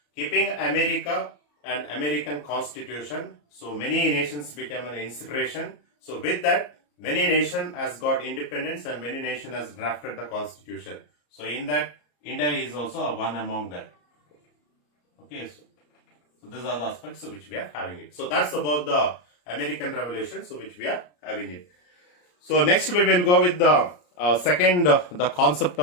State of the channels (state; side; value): late; right; 34 ms